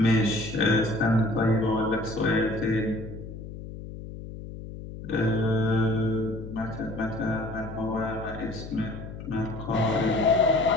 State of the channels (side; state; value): left; noise; hum, 11 dB below the sound